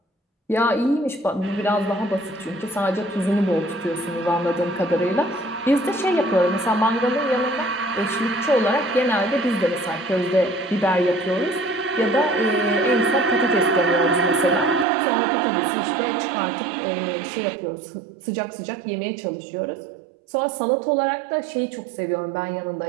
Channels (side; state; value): left; drops out; at 14.9 s